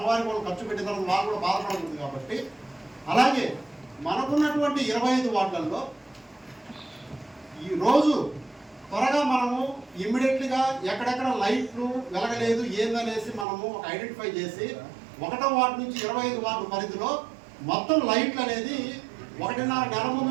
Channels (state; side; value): drops out; left; at 13.5 s